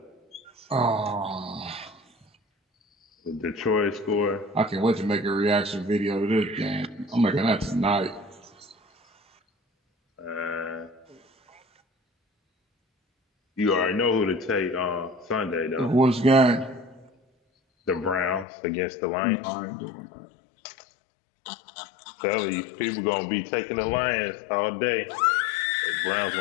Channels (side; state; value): right; drops out; at 18.4 s